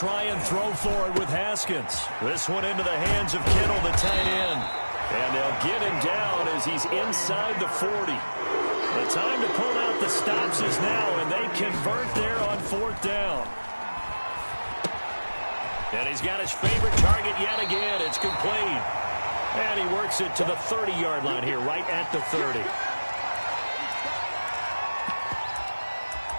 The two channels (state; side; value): inverted; both; correlation -1.00